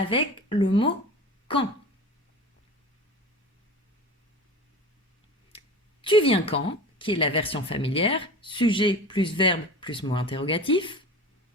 le mot quand. Tu viens quand, qui est la version familière, sujet plus verbe plus mot interrogatif.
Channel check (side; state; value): both; normal; correlation 0.34